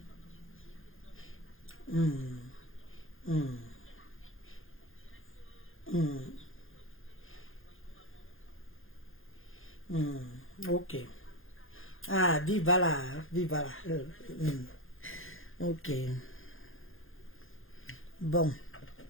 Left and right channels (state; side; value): late; right; 0.59 ms